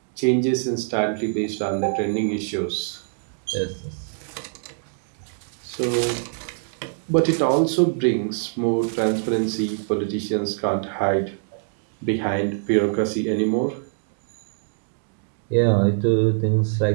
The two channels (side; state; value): left; silent; digital silence